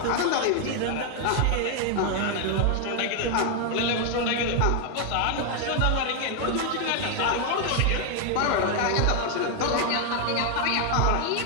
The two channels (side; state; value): both; different; correlation 0.01